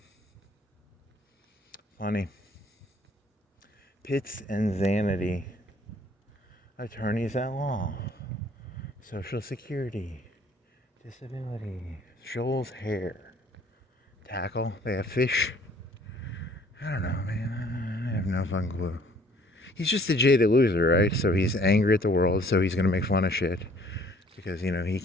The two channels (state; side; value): normal; both; correlation 0.58